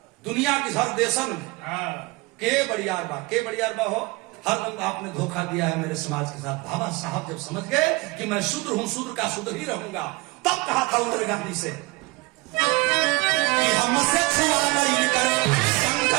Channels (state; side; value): quieter; left; 24.1 dB